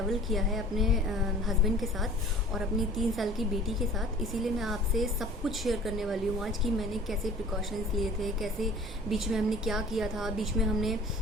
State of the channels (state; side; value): normal; both; correlation 0.47